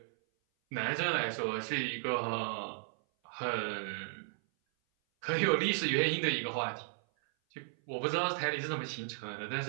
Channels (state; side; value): silent; left; 55 dB below the other